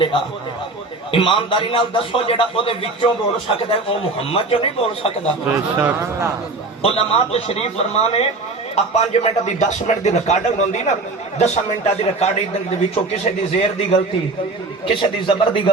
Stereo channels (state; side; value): quieter; left; 3.4 dB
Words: ایمانداری نال دسو جڑا او دے وچوں بول سکدا ہے او محمد جو نہیں بول سکدا بے شک علماء تشریف فرمانے اب 5 منٹ دی 10 منٹ دی ریکارڈنگ ہوندی نا 10 منٹاں دی ریکارڈنگ دے وچوں کسے دی زیر دی غلطی کسے دی زبر دی